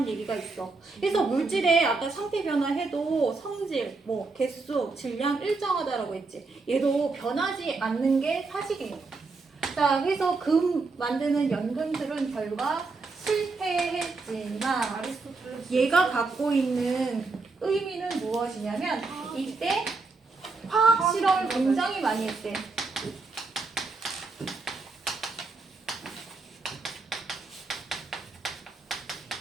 얘기가 있어. 그래서 물질의 아까 상태 변화해도 성질, 뭐 개수, 질량 일정하다라고 했지. 얘도 변하지 않는 게 사실이에요. 자, 그래서 금 만드는 연금술은 결과 실패했지만 아리스토텔레스. 얘가 갖고 있는 의미는 무엇이냐면 이때 화학 실험을 굉장히 많이 했대.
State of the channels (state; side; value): quieter; left; 3.9 dB